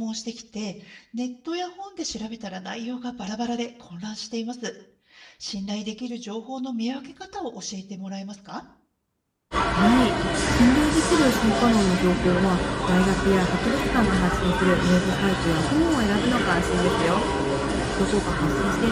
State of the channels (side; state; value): both; identical; correlation 1.00